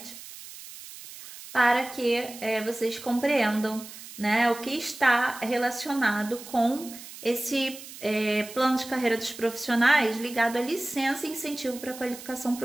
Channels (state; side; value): noise; right; hiss, 15 dB below the sound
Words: para que vocês compreendam, né, o que está relacionado com esse plano de carreira dos profissionais ligado à licença e incentivo para a qualificação